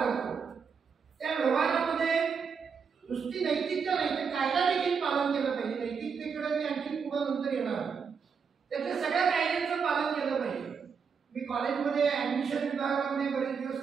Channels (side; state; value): left; quieter; 6.1 dB